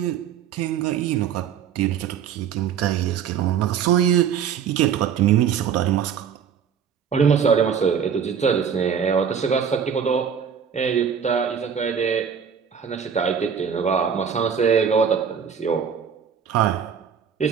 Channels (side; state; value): left; quieter; 7.6 dB